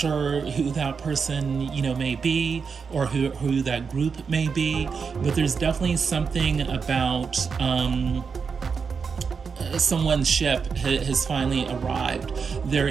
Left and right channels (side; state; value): left; quieter; 5.7 dB